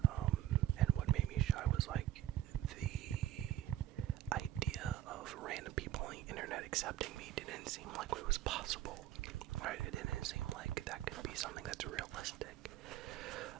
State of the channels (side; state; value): left; quieter; 12.9 dB